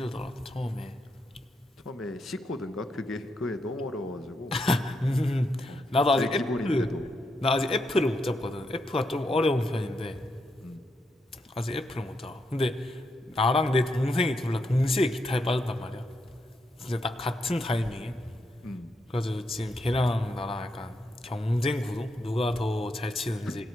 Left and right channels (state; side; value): normal; both; correlation 0.81